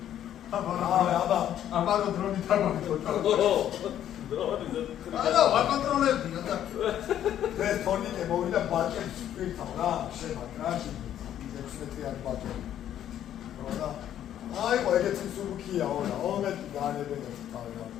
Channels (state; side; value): quieter; right; 10.9 dB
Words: აბა, ამარო დრონი თამაშობდა. არა, ვაკონტროლებდი და ეს თორნიკე მოვიდა ბაჭებს პირთავ რა, შემაგ რა, 16-იანი ბაჭები. რა. აიყო ეგეთი სულქია ორა, ომეთი განებენებს თავი რა.